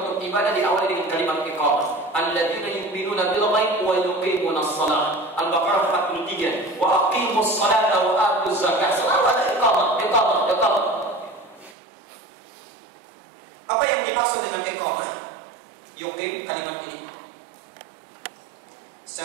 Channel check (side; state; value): left; drops out; at 11.8 s